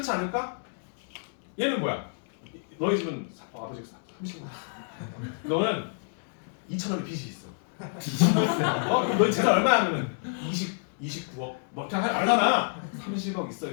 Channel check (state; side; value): silent; right; digital silence